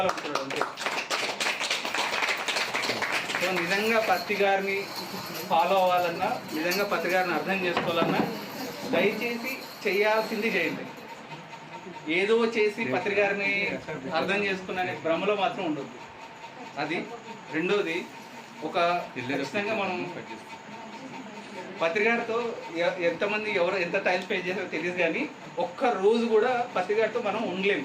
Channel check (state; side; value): identical; both; correlation 1.00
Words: అంతే. సో నిజంగా పత్రికారిని ఫాలో అవ్వాలన్నా, నిజంగా పత్రికారిని అర్థం చేసుకోవాలన్నా దయచేసి చేయాల్సింది చేయండి. ఏదో చేసి పత్రికారిని అర్థం చేసుకున్న భ్రమలో మాత్రం ఉండదు. అది రెండోది, ఒక ఖచ్చితంగా మనం పత్రికారితో ఎంతమంది ఎంత టైం స్పెండ్ చేస్తారో తెలియదు, కానీ ఒక్క రోజు కూడా పత్రికారితో మనం ఉండలేము.